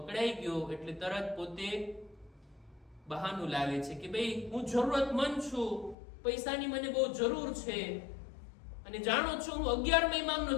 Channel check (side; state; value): right; drops out; at 6.0 s